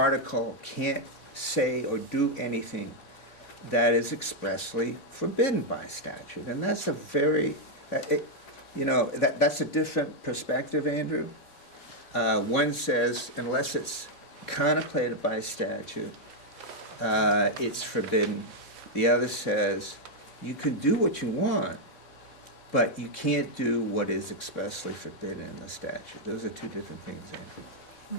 can't say or do anything that is expressly forbidden by statute. And that's a that's a different perspective, Andrew. One says, unless it's contemplated by statute, it's forbidden. The other says, you can do what you want, but you can't do what is expressly forbidden in the statute. Those are two different things, Andrew.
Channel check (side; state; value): right; late; 3.6 ms